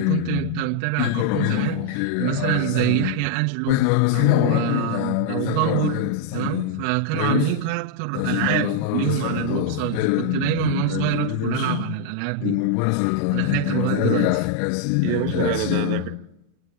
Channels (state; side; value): different; both; correlation 0.00